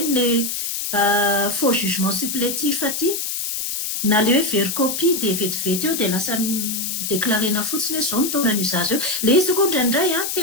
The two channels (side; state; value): left; noise; hiss, 3 dB below the sound